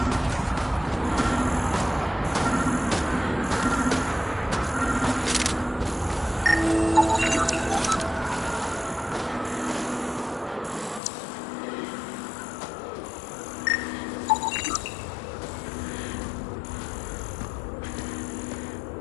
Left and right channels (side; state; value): right; drops out; at 11.0 s